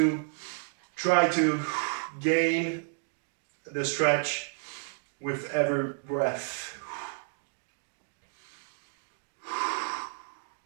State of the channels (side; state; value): left; silent; digital silence